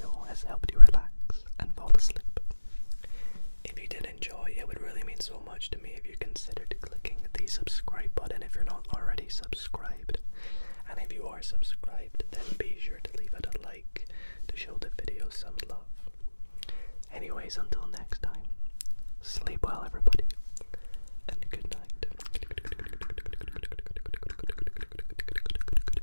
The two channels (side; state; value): both; inverted; correlation -1.00